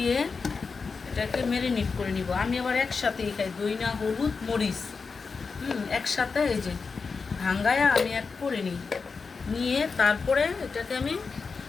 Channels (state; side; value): quieter; right; 4.8 dB